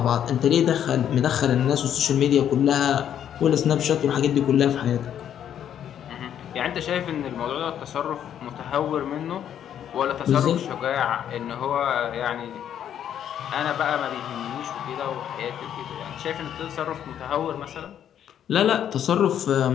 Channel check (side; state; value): right; quieter; 9.8 dB